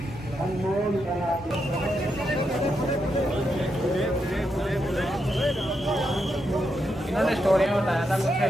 इन्होंने स्टोरी में बताया था कुछ,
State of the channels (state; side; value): normal; both; correlation 0.83